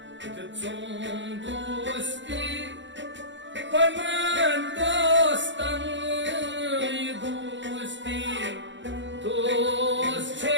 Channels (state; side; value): late; left; 0.54 ms